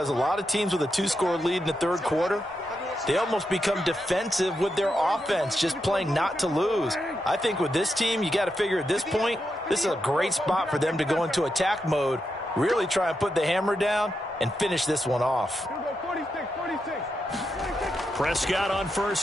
a lot of teams with a 2-score lead in the third quarter, they almost become defensive with their offense, just playing not to lose. I think with this team, you got to figure at this point, this is a great spot for them to go into attack mode, really try and put the hammer down and finish this one off. Prescott on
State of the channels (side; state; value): both; normal; correlation 0.85